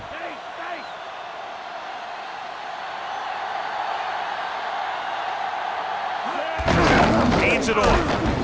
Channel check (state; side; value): identical; both; correlation 1.00